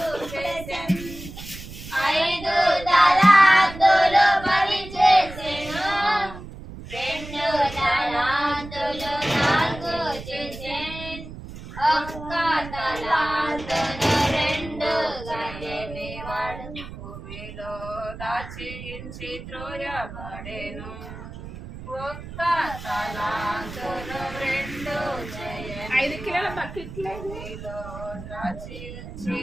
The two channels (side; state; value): right; noise; rumble, 12 dB below the sound